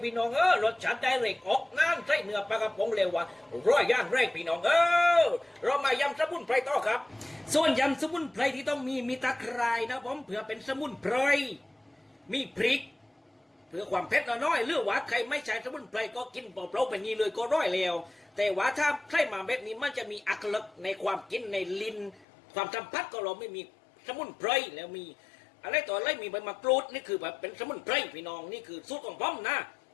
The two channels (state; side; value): drops out; right; at 22.2 s